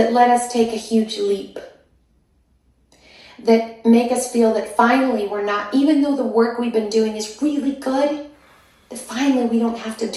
let us take a huge leap, that make us feel that finally we're not, even though the work we've been doing is really good, that finally we don't have to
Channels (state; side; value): identical; both; correlation 1.00